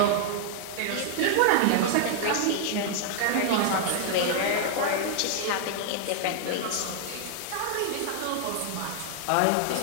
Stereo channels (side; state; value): both; different; correlation 0.00